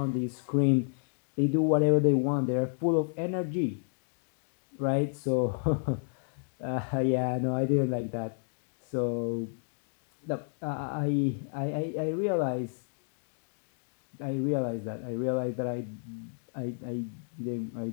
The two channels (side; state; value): right; silent; digital silence